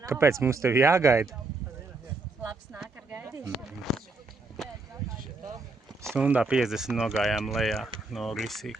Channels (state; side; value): quieter; left; 3.6 dB